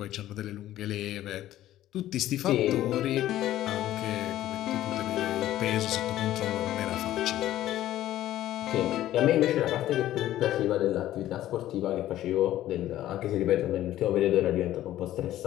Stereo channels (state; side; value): quieter; right; 13.6 dB